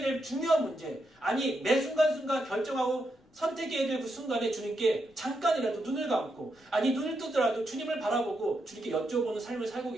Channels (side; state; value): both; normal; correlation 0.83